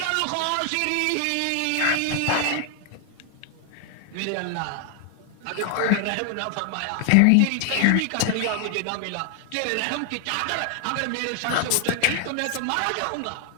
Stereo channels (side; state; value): both; different; correlation 0.00